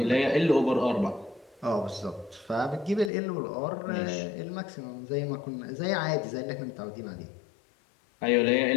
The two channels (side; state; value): right; drops out; at 3.1 s